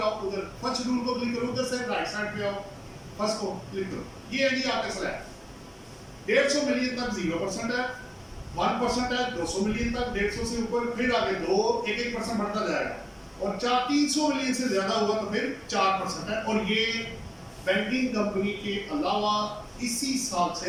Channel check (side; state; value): both; identical; correlation 1.00